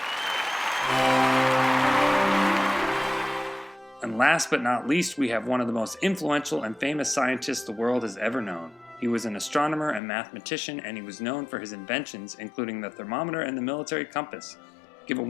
And last but not least, we have one of the most influential and famous scientists the world has ever known. He was an astronomer and mathematician, and he was known for his inventions, including the thermometer and the military compass. Give a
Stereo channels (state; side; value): drops out; right; at 10.0 s